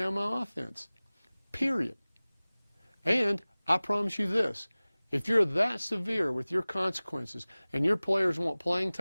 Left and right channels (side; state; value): both; inverted; correlation -0.99